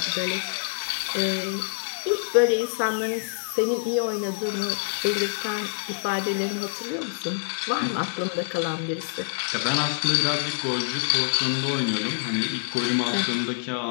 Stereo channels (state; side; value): silent; right; digital silence